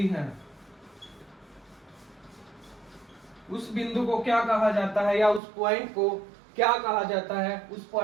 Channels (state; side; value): drops out; left; at 5.4 s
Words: हैं, उस बिंदु को क्या कहा जाता है या उस पॉइंट को क्या कहा जाता है? उस